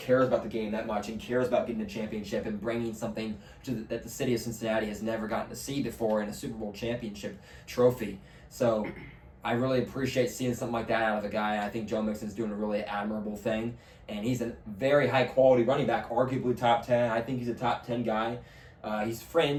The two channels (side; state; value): both; identical; correlation 1.00